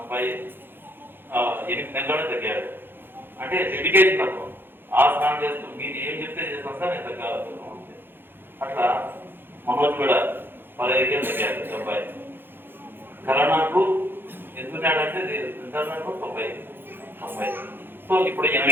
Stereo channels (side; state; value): left; late; 0.10 ms